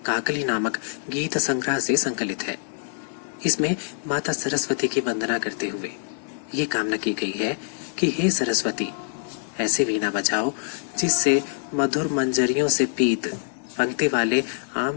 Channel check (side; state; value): right; silent; digital silence